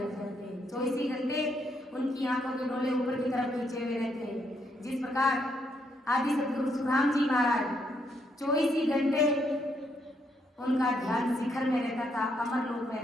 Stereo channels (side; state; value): both; normal; correlation 0.75